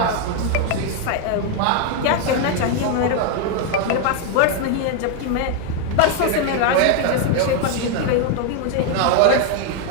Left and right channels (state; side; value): different; both; correlation 0.01